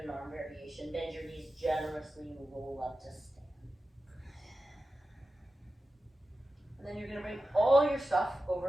an arm variation. Bend your knees generously and roll up to stand. And then you're going to bring all your stuff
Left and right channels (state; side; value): normal; both; correlation 0.93